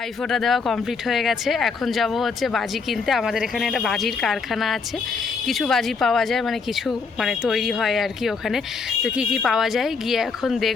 দেওয়া কমপ্লিট হয়ে গেছে, এখন যাব হচ্ছে বাজি কিনতে। আমাদের এখানে একটা বাজির কারখানা আছে, কিছু বাজি পাওয়া যায়, মানে কিছু মানে তৈরি হয় আর কি ওখানে। তো কি কি পাওয়া যায় গিয়ে এখন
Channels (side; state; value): right; quieter; 4.9 dB